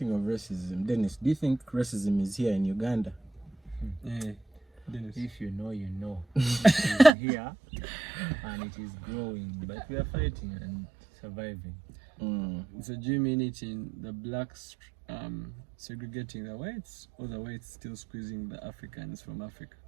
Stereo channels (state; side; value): drops out; left; at 7.1 s